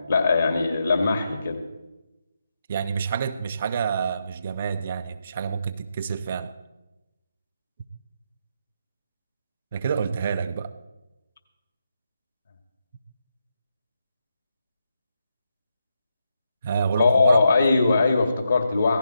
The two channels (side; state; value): both; inverted; correlation -0.83